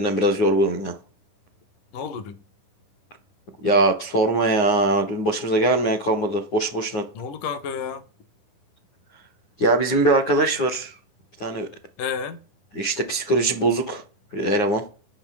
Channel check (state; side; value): late; right; 9.6 ms